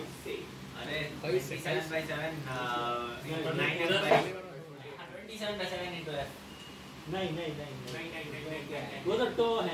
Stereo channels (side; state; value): both; identical; correlation 1.00